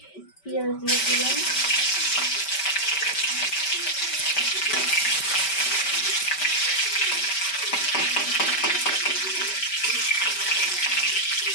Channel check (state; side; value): late; right; 5.2 ms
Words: পেঁয়াজ দিয়ে দিলাম,